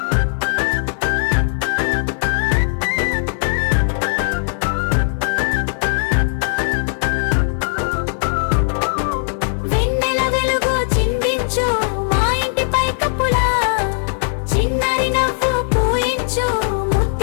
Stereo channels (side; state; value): right; silent; 60 dB below the other